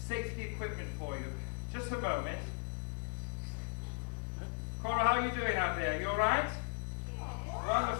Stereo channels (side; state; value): right; silent; digital silence